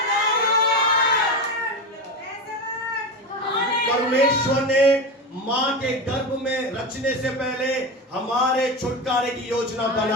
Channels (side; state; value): both; normal; correlation 0.21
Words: परमेश्वर ने मां के गर्भ में रचने से पहले हमारे छुटकारे की योजना